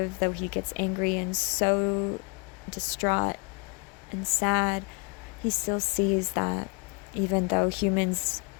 though he gets angry and so distraught and sad, he still sees that even though humans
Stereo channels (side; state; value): right; quieter; 32.2 dB